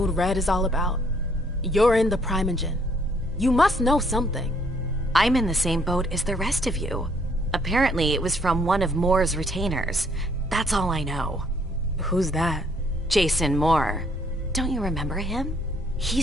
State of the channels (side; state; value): both; normal; correlation 0.66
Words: Red is all about? You're in the Primogen. You must know something. I'm in the same boat as the rest of you. Apparently, it was from one of Moore's retainers. That's all I know. Who's that? Jason Moore. Don't you remember him?